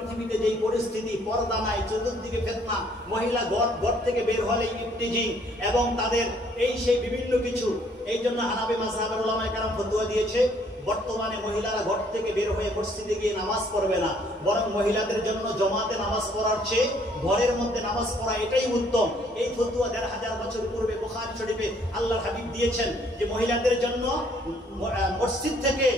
যেই পরিস্থিতি, পর্দা নাই, চতুর্দিকে ফিতনা, মহিলা ঘর থেকে বের হলেই ইফতিজিং এবং তাদের এই সেই বিভিন্ন কিছু, এই জন্য হানাফি মাযহাবের উলামায়ে কেরাম ফতোয়া দিয়েছে বর্তমানে মহিলারা ঘর থেকে বের হয়ে মসজিদে গিয়ে নামাজ পড়বে না, বরং মহিলাদের জন্য জমাতে নামাজ পড়ার চেয়ে ঘরের মধ্যে নামাজ পড়া এটাই উত্তম। এই ফতোয়া ১৫০০ বছর পূর্বে বুখারী শরীফে আল্লাহর হাবিব দিয়েছেন যে মহিলাদের জন্য মসজিদ থেকে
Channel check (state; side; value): normal; both; correlation 0.63